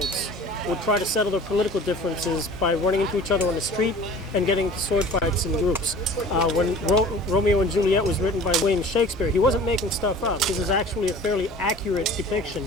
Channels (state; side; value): normal; both; correlation 0.44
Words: would try to settle their political differences by running into each other on the street and getting into sword fights in groups. When Romeo and Juliet was written by William Shakespeare, he wasn't making stuff up. This is actually a fairly accurate